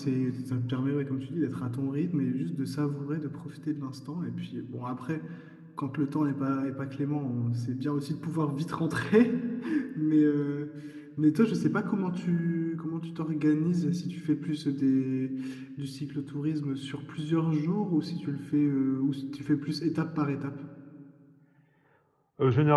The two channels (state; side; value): identical; both; correlation 1.00